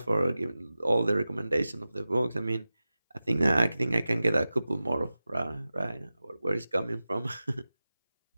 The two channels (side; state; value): both; inverted; correlation -0.95